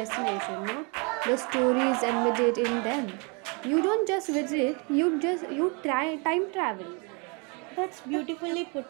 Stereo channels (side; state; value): left; quieter; 33.1 dB